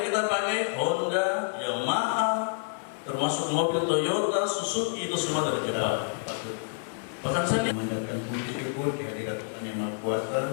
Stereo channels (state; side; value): silent; right; digital silence